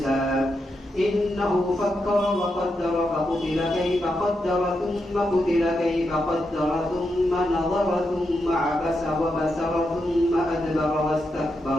إنه فكر وقدر فقتل كيف قدر ثم قتل كيف قدر ثم نظر ثم عبس وبسر ثم أدبر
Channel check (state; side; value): normal; both; correlation 0.85